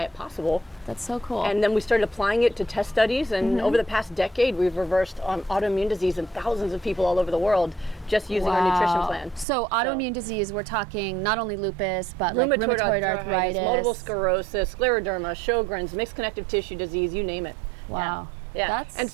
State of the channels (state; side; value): drops out; left; at 9.5 s